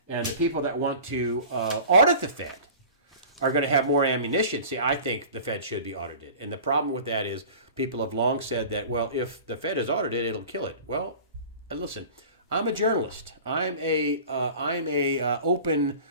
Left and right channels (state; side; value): inverted; both; correlation -0.40